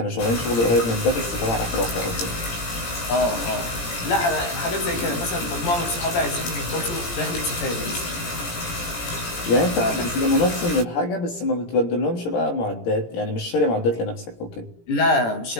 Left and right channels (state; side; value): late; right; 17 ms